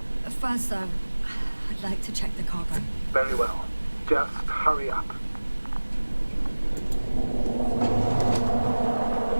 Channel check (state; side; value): inverted; both; correlation -1.00